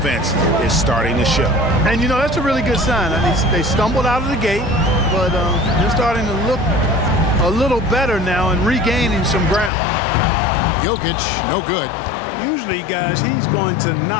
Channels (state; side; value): drops out; right; at 9.7 s